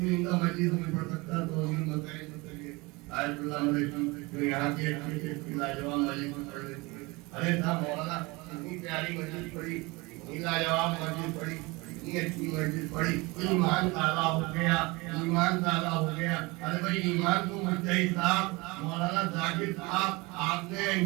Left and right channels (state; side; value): quieter; left; 24.6 dB